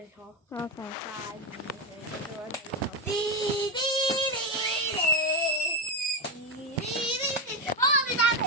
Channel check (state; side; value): normal; both; correlation 0.10